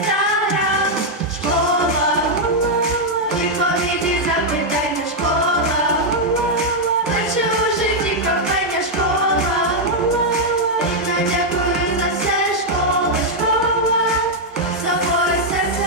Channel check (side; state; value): both; normal; correlation -0.02